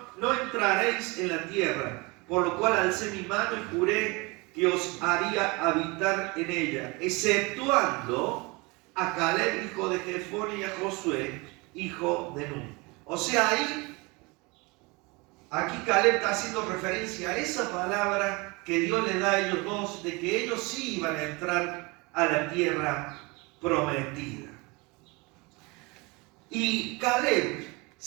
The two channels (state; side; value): quieter; left; 26.3 dB